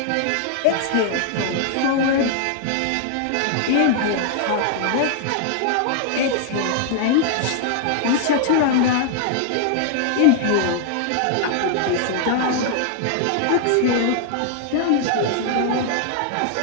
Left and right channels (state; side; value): different; both; correlation -0.01